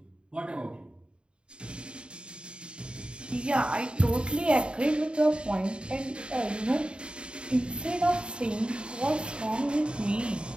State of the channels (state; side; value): late; left; 0.053 ms